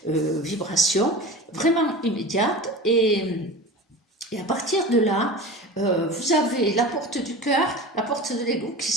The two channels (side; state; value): both; normal; correlation 0.33